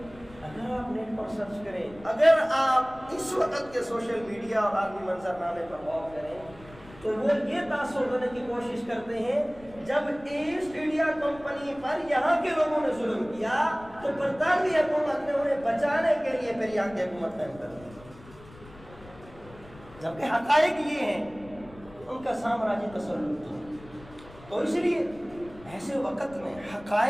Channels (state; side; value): noise; left; rumble, 21 dB below the sound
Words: اگر آپ نیٹ پر سرچ کریں، اگر آپ اس وقت کے سوشل میڈیا اور عالمی منظرنامے پر غور کریں تو وہ یہ تاثر دینے کی کوشش کرتے ہیں جب ایسٹ انڈیا کمپنی پر یہاں کے لوگوں نے ظلم کیا تو برطانوی حکومت نے انہیں بچانے کے لیے پھر یہاں کی حکومت قائم کر دی، جبکہ حقائق یہ ہیں ان کا سامراجی تسلط تھا۔ تو اس لیے ایسے وقت میں